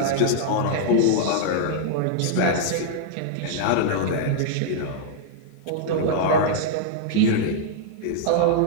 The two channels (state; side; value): different; both; correlation -0.01